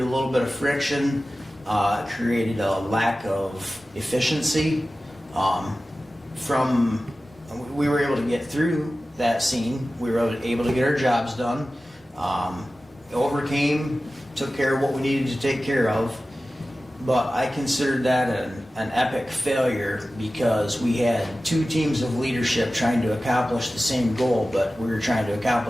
a little bit of friction, created a lack of efficiency. We were able to get through that scene. We were able to get our jobs done. Overcame, took care of what we needed to take care of. But I considered that an epic failure because we had two teams of leadership trying to accomplish the same goal, but we were trying to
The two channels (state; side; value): normal; both; correlation 0.95